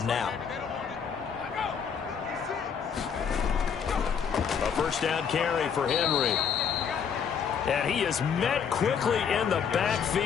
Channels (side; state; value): right; quieter; 7.0 dB